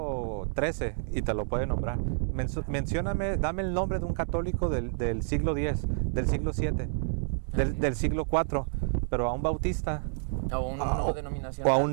XIII y te lo puede nombrar. Mencióname, dame el nombre de un católico del siglo X, del siglo VII, del siglo IV, pero a un bautista... O un no denominacional. O a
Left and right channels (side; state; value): left; silent; digital silence